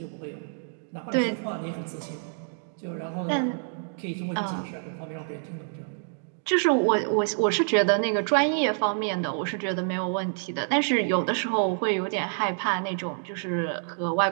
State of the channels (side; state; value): left; silent; digital silence